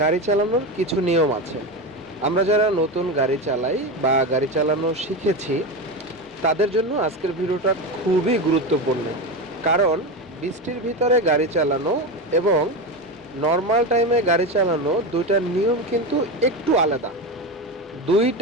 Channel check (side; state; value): both; normal; correlation 0.19